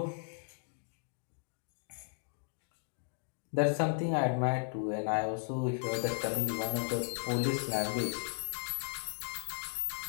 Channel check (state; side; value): silent; right; digital silence